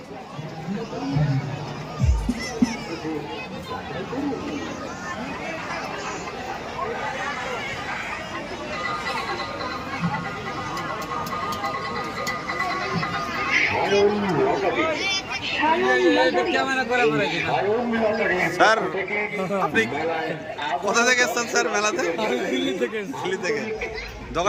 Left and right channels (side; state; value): both; identical; correlation 1.00